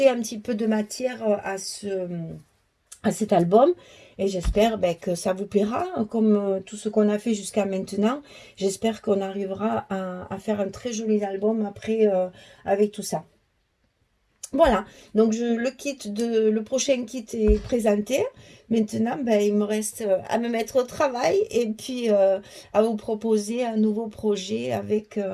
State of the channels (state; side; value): identical; both; correlation 1.00